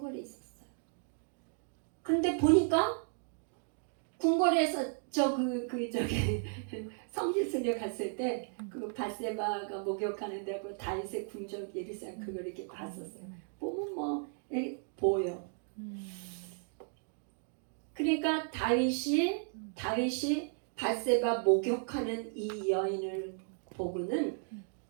있었어요. 근데 보니까 궁궐에서 저기 성지순례 갔을 때 그 밧세바가 목욕하는데 그 다윗의 궁전 예리상 그걸 이렇게 봤었어요. 보면 뭐 보여. 그러니까 다윗이 밧세바 목욕하는 이 여인을 보고는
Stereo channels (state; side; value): silent; left; 55 dB below the other